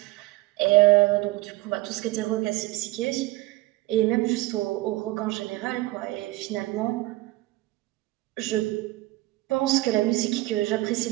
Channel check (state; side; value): quieter; left; 19.4 dB